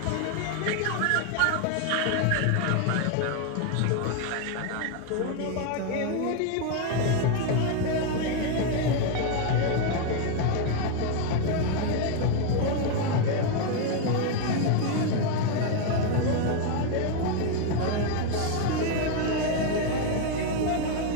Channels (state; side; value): different; both; correlation 0.01